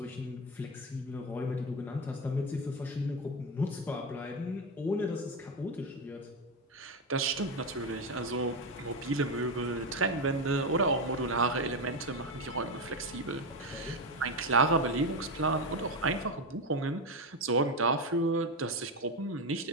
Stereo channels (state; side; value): normal; both; correlation 0.12